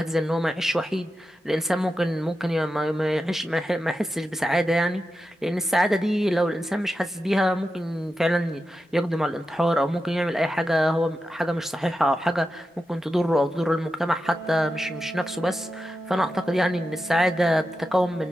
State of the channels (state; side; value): normal; both; correlation 0.90